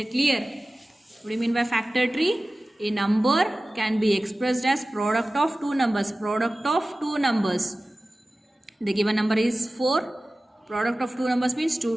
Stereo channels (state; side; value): normal; both; correlation 0.96